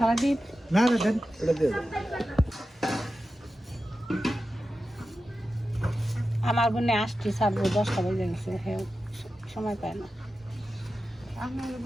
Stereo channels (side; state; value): both; normal; correlation 0.92